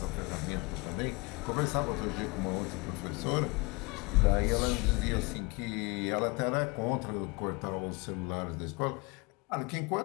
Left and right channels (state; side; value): quieter; right; 26.5 dB